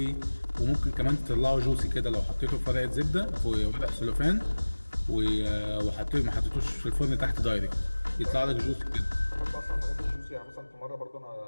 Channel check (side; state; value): both; inverted; correlation -1.00